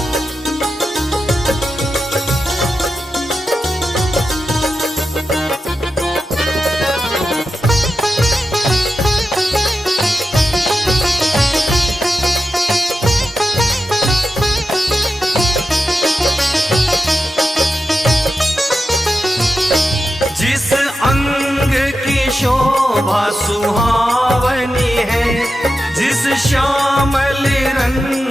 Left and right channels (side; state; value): both; normal; correlation 0.90